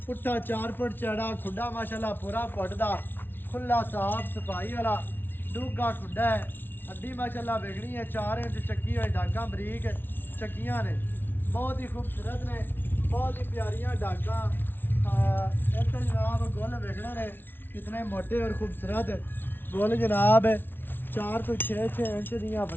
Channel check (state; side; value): late; right; 0.10 ms